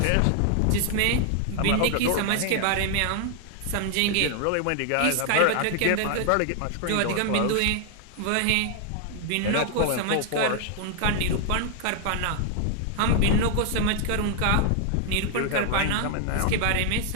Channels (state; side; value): different; both; correlation 0.00